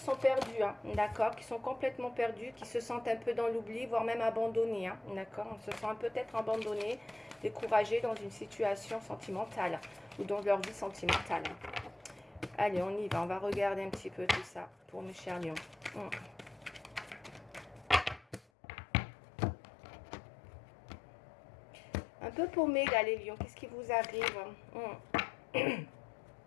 perdus, hein, d'accord? Qui sont complètement perdus, qui se sentent un peu dans l'oubli, voire même abandonnés, hein, d'accord? On se sent peut-être abandonnés, découragés dans une situation sentimentale ou dans leur vie sentimentale. Allez, on y va. On va regarder un petit peu tout ça pour mes chers lions. Un peu paumé, là, les lions. Qu'est-ce qui vous arrive?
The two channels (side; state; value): right; drops out; at 18.4 s